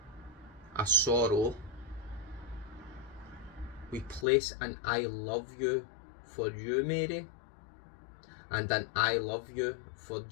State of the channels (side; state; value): right; drops out; at 4.2 s